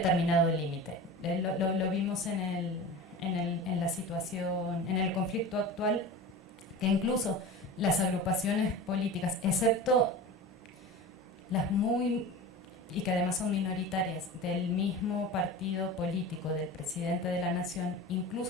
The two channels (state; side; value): normal; both; correlation 0.32